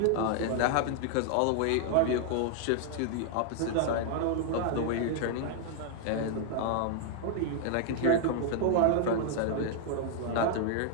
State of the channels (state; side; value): different; both; correlation 0.00